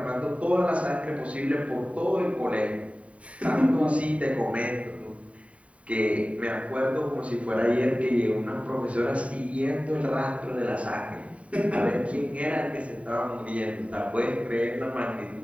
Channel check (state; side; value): late; left; 0.065 ms